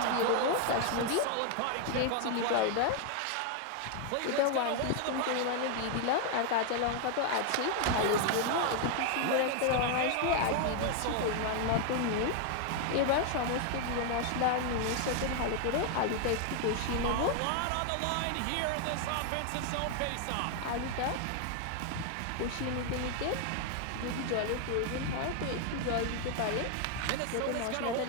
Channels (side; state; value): both; different; correlation 0.00